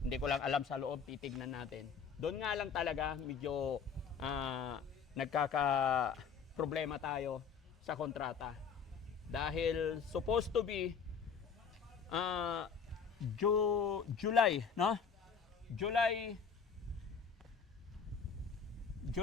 Hindi ko lang alam sa loob, titignan natin. Doon nga lang talaga, medyo nagkaka-problema tayo sa kontrata. Dahil supposed to be July, no? July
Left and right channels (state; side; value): quieter; right; 6.3 dB